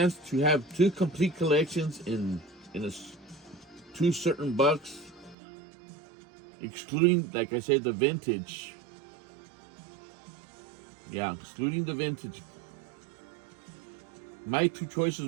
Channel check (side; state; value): left; drops out; at 5.4 s